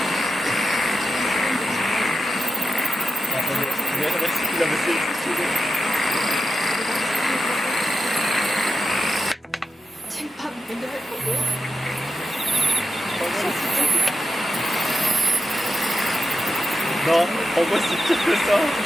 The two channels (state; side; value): normal; both; correlation 0.88